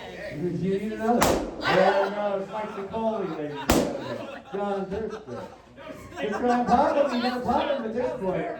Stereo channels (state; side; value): identical; both; correlation 1.00